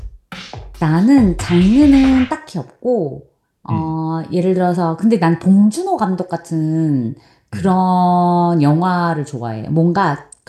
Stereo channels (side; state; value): both; identical; correlation 1.00